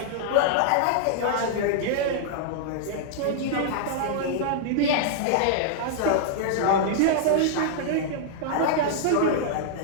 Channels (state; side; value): different; both; correlation -0.01